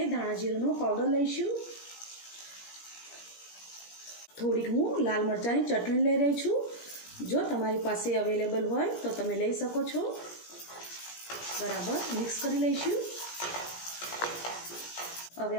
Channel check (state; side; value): late; right; 17 ms